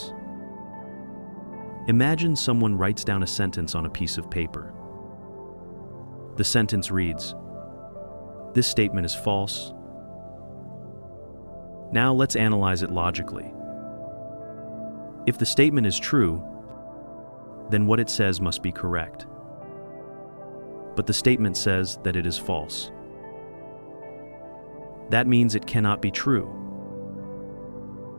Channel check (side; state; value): both; inverted; correlation -1.00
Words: Imagine someone writes down a sentence on a piece of paper. The sentence reads, "This statement is false." Now let's analyze it logically. If the statement is true, then what it says must be correct. But the statement says that it is false. That means it cannot be true.